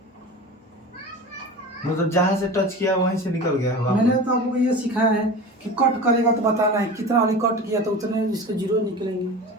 मतलब जहाँ से टच किया वहीं से निकल गया है मैंने वापस। तो आपको ये सिखाया है कि कट करेगा तो बताना है कितना वाली कट किया तो उतने इसके जीरो निकलेंगे।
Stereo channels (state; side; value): normal; both; correlation 0.33